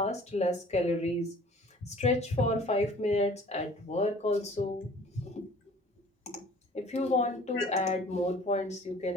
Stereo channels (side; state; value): both; normal; correlation 0.50